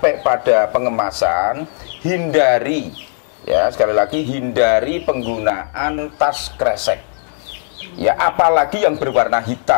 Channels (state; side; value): silent; right; digital silence